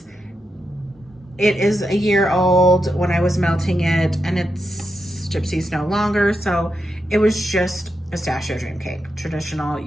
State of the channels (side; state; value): both; normal; correlation 0.85